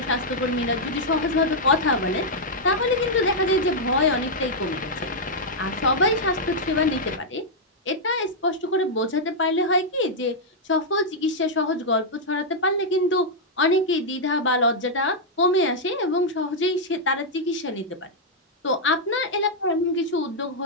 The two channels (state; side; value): normal; both; correlation -0.05